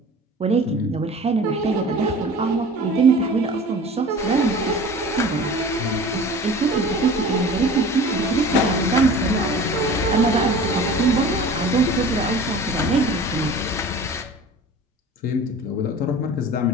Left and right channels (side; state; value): both; normal; correlation 0.41